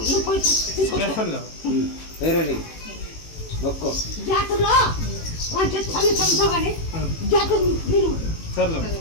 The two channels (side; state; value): right; late; 18 ms